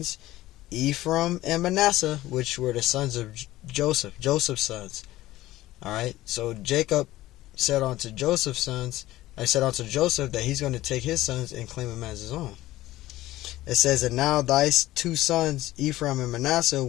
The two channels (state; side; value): quieter; right; 16.3 dB